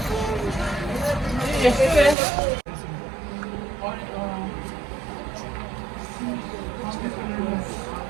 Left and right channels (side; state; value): left; drops out; at 2.1 s